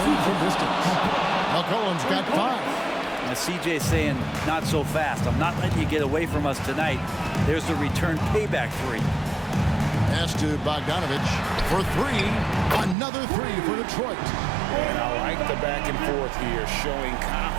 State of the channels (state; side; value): drops out; left; at 13.0 s